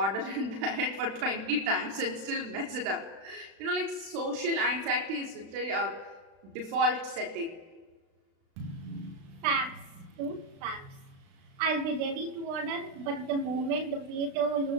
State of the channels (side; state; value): left; late; 36 ms